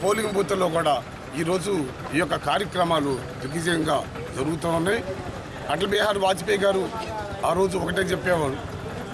పోలింగ్ బూత్లో కూడా ఈరోజు ఈ యొక్క కార్యక్రమాలు దిగ్విజయంగా జరుగుతూ ఉన్నాయి. అటల్ బిహారీ వాజ్పేయి గారు ఆ రోజు ఒకటే చెప్పేవారు,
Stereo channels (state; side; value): identical; both; correlation 1.00